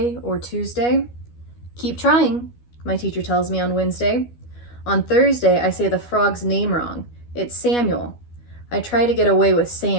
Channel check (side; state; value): right; late; 12 ms